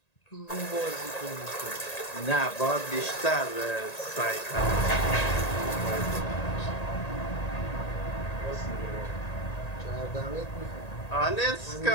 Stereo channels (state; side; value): late; right; 1.8 ms